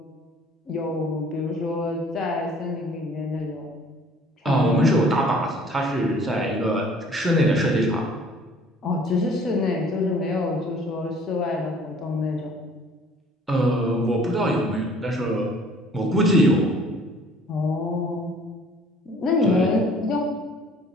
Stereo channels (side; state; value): both; normal; correlation 0.54